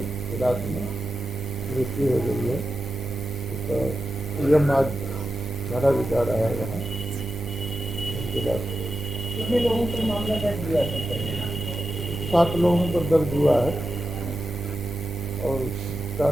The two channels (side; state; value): both; normal; correlation 0.90